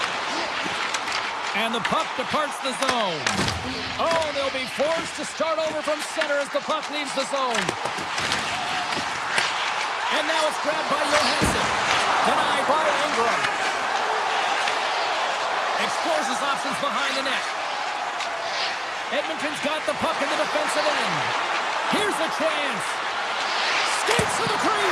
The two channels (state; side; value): identical; both; correlation 1.00